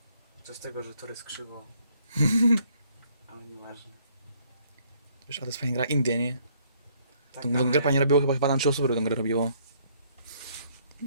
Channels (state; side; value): inverted; both; correlation -0.65